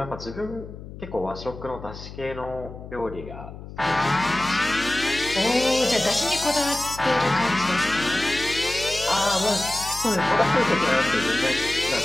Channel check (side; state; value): left; noise; hum, 13 dB below the sound